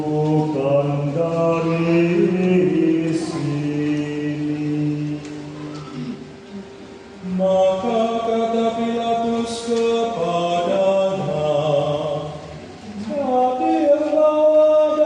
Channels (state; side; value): identical; both; correlation 1.00